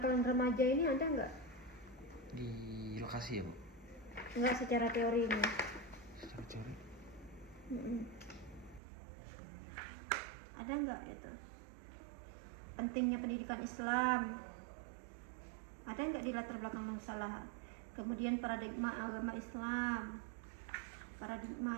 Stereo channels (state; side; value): drops out; left; at 8.8 s